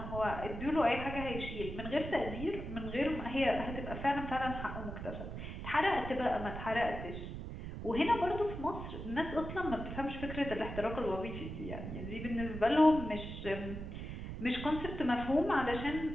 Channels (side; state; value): right; noise; rumble, 7 dB below the sound